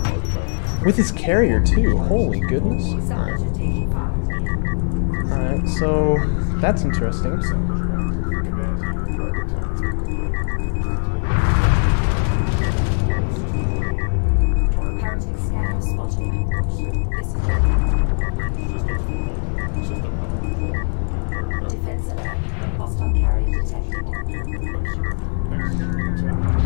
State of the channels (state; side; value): silent; right; 65 dB below the other